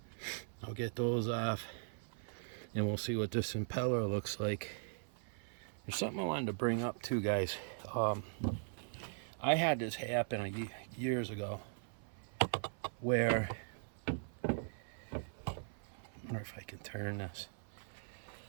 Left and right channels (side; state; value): left; silent; 51 dB below the other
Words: I'll get those off and we'll see what this impeller looks like. There's something I wanted to bring up too, guys. I had this happen years ago where, I wonder if I can turn this.